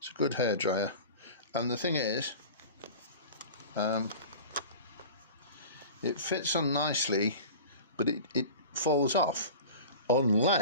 good hairdryer. And the thing is, it fits on nicely, but it falls off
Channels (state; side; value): inverted; both; correlation -0.37